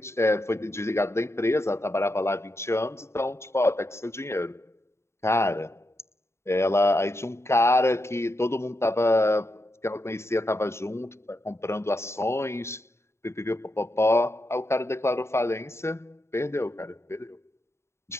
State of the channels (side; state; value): right; late; 0.13 ms